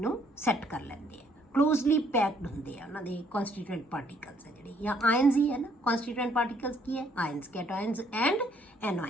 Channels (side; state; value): both; normal; correlation 0.66